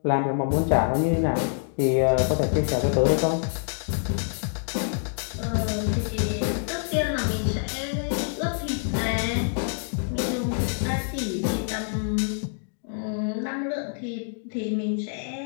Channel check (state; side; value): silent; right; digital silence